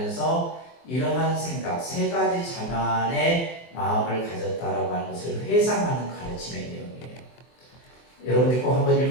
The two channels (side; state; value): right; late; 24 ms